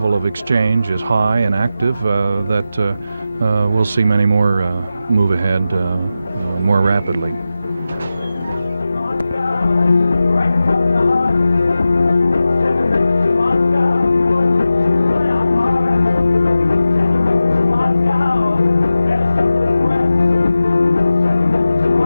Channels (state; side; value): inverted; both; correlation -0.93